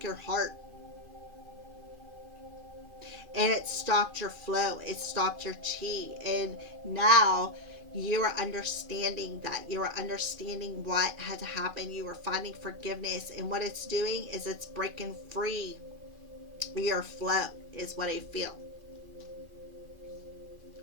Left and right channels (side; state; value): left; late; 2.5 ms